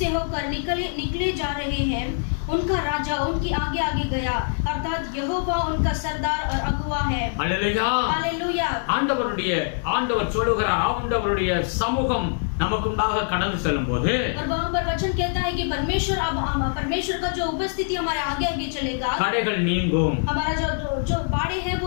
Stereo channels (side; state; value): right; silent; digital silence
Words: होकर निकले जा रहे हैं। उनका राजा उनके आगे आगे गया, अर्थात यहोवा उनका सरदार और अगुवा है। Hallelujah, hallelujah. ஆண்டவர் சொல்லுகிறார், ஆண்டவருடைய சமூகம் நமக்குண்டாக கடந்து செல்லும்போது और वहाँ पर वचन कहता है कि परमेश्वर का जो उपस्थिति हमारे आगे आगे चलेगा, தடைகள் நீங்கும். हमारा जो बाड़े है